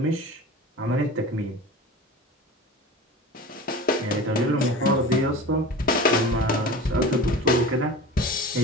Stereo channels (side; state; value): both; normal; correlation 0.35